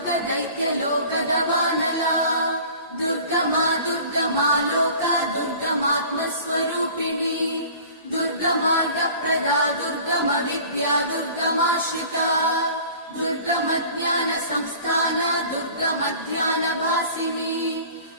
दुर्गमा दुर्गमा लोका दुर्गमात्मस्वरूपिणी दुर्गमार्गप्रदा दुर्गम विद्या दुर्गमाश्रिता दुर्गमज्ञान संस्थान दुर्गमध्यानभासिनी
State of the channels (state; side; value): inverted; both; correlation -0.45